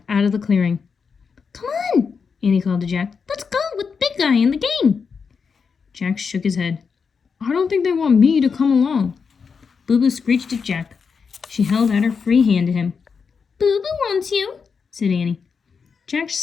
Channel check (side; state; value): right; quieter; 5.7 dB